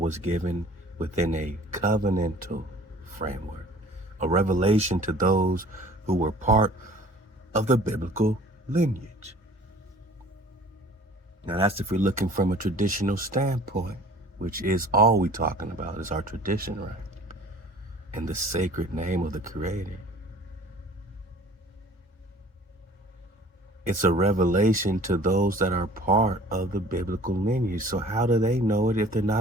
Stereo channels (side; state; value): both; normal; correlation 0.48